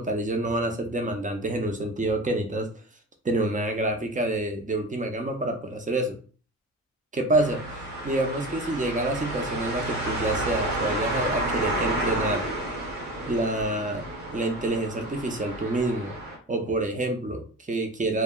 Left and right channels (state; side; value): normal; both; correlation 0.31